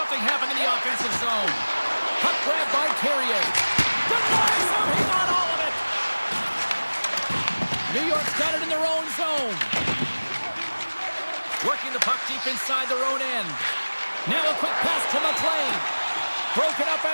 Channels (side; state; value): both; inverted; correlation -1.00